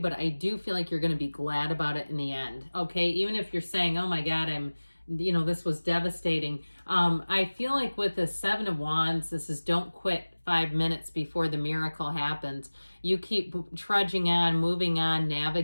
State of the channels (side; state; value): both; inverted; correlation -1.00